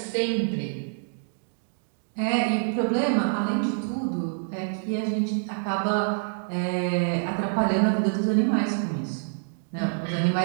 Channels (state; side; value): silent; left; digital silence